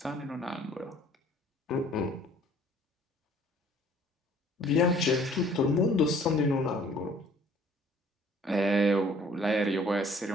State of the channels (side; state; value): both; normal; correlation 0.56